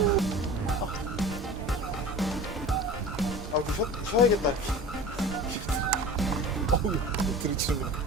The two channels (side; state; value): both; normal; correlation 0.37